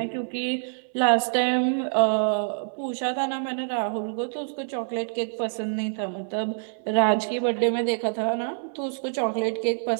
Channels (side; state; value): left; silent; 61 dB below the other